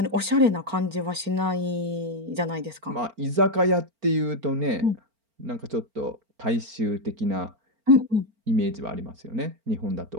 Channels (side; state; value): left; late; 4.4 ms